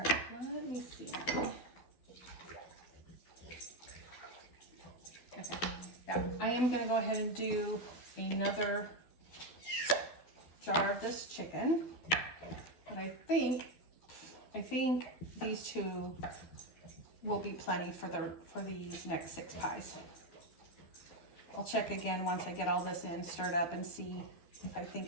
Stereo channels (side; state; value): right; late; 12 ms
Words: let me see. Okay, yeah, I am gonna go ahead and do another jar of this chicken, but I think these 2 will be plenty for these next 6 pies. I'll check again once I get all this in, stirred up, and see if I think